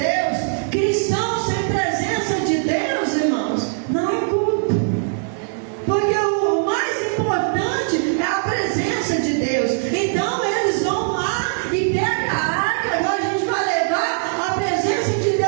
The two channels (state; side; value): silent; left; 65 dB below the other